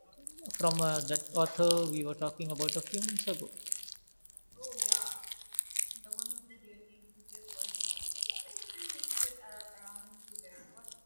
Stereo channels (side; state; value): both; inverted; correlation -1.00